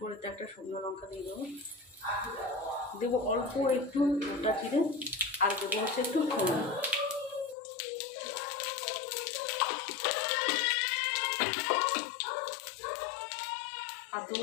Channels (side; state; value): right; drops out; at 7.6 s